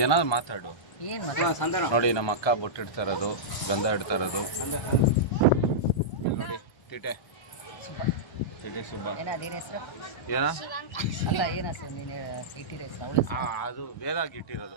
ಏನಾದ್ರು ಮಾತಾಡು. ಏನು ಮಾತಾಡ. ನೋಡಿ ನಮ್ಮ ಅಕ್ಕ ಬೊಟ್ಟಿಡ್ತಾ ಇರೋದು, ಗಂಧ ಇಡ್ತಾ ಇರೋದು. ನೋಡಿ ಟಿಟೆ ಸುಬ್ಬ. ಏನ ಅದೇನು ಹೆಸರು? ಏನ ಅಲ್ಲ ಏನು ಹೆಸರು ನೀನು ಇಟ್ಟಿರೋ ಹೆಸರು? ಅವಳ ಅದು ವೇದಾಗಿ ಇಟ್ಟಿರೋದು.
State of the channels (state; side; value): late; right; 1.3 ms